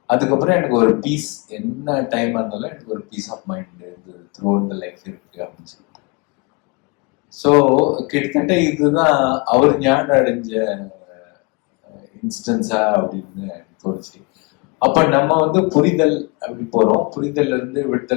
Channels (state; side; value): quieter; right; 30.0 dB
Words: அதுக்கப்புறம் எனக்கு ஒரு பீஸ், என்ன டைம் இருந்தாலும் எனக்கு ஒரு peace of mind throughout the life இருக்கு அப்படின்னு சொல்லிட்டு. ஸோ கிட்டத்தட்ட இதுதான் அவர் ஞானம் அடைஞ்ச இன்ஸ்டன்ஸா அப்படின்னு தோணுச்சு. அப்ப நம்ம வந்து புரிதல் அப்படி போறோம், புரிதல்ல இருந்து